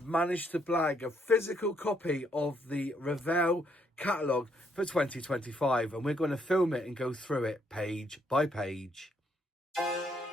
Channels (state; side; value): normal; both; correlation 0.72